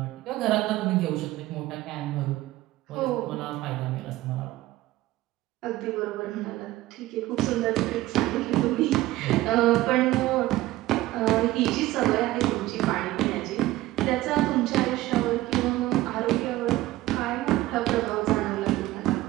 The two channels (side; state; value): left; quieter; 16.7 dB